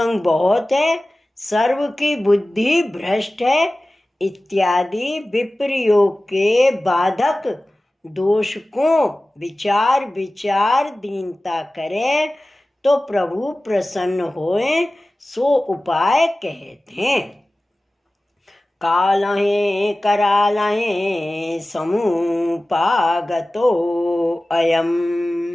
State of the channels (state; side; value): normal; both; correlation 0.97